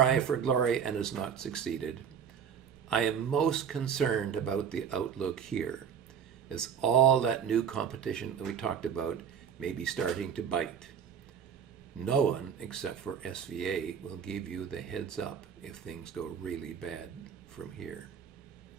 for glory and has not succeeded. I am most concerned about the outlook here, as all that new competition that we talked about may be starting to bite. No one, except for SVA, will give you the heads up if things go really bad from here.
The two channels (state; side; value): quieter; left; 7.7 dB